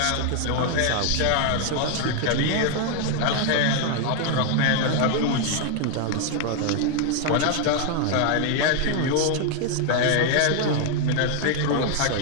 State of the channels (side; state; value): both; different; correlation 0.00